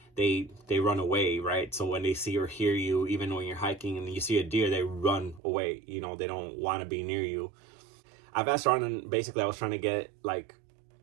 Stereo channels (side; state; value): left; drops out; at 5.4 s